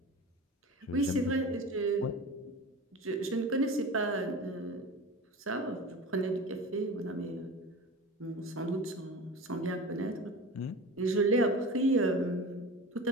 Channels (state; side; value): normal; both; correlation 0.33